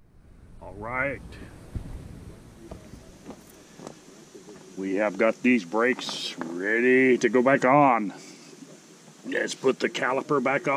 All right. We have got these brakes ready to go back on. Let's put the caliper back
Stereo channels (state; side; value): identical; both; correlation 1.00